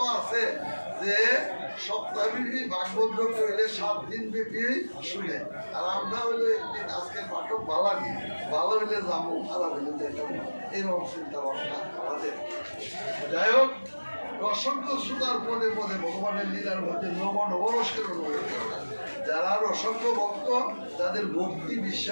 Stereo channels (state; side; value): inverted; both; correlation -1.00